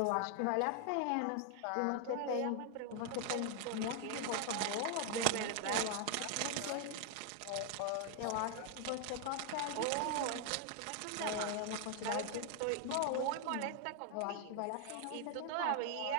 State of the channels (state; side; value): different; both; correlation 0.00